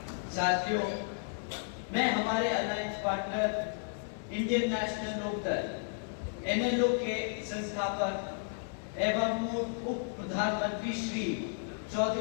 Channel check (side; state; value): right; silent; digital silence